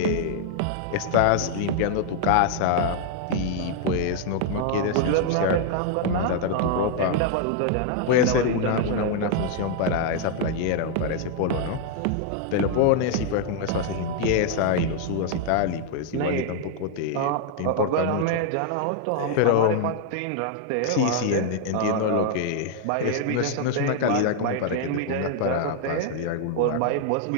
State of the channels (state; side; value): different; both; correlation 0.00